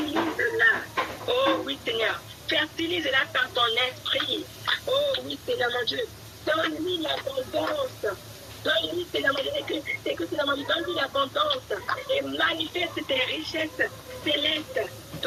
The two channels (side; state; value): both; identical; correlation 1.00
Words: Oh oui, Seigneur, fertilise-la par ton esprit. Oh oui, Seigneur mon Dieu, donne-lui l'abondance. Donne-lui, Seigneur mon Dieu, donne-lui l'abondance et manifeste tes richesses célestes